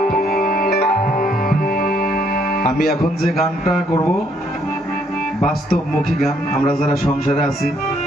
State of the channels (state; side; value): normal; both; correlation 0.69